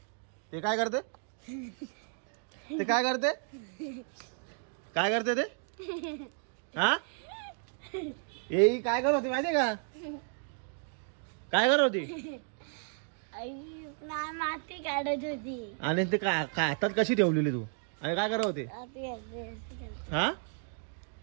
ते काय करते ते काय करते काय करते ते हा ए काय करत होती माहितीये का काय करत होती माती काढत होती आणि ते काय हातात कशी ठेवलेली तू आणि काय करत होते हा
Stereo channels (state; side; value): silent; left; 56 dB below the other